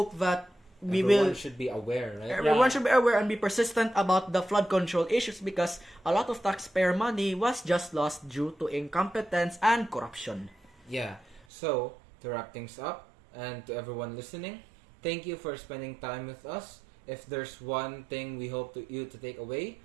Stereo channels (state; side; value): drops out; left; at 11.5 s